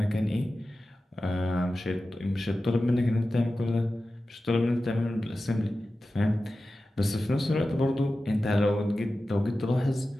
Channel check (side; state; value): both; normal; correlation 0.94